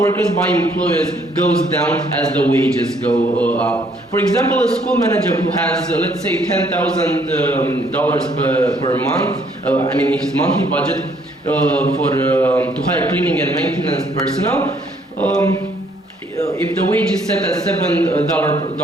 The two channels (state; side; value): normal; both; correlation 0.65